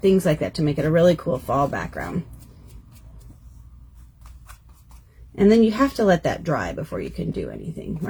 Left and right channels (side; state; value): both; identical; correlation 1.00